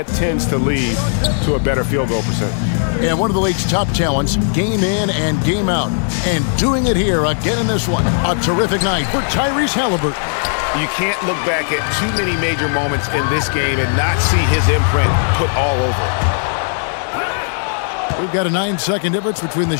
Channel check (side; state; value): right; silent; digital silence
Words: tends to lead to a better field goal percentage. And one of the league's top talents, game in and game out. And doing it here again in this one. A terrific night for Tyrese Halliburton. You can't look back at too many major moments in this game and not see his imprint put all over it. We've got a 9-second difference between the